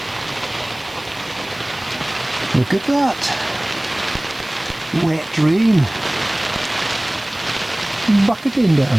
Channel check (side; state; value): right; noise; hiss, 23 dB below the sound